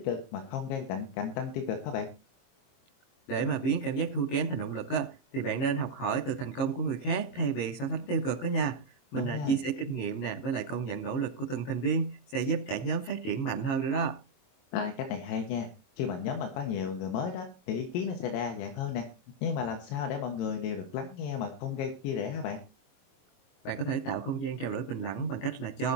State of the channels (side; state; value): right; late; 22 ms